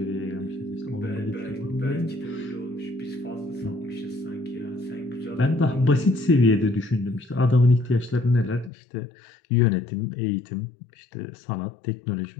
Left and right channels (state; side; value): drops out; right; at 8.7 s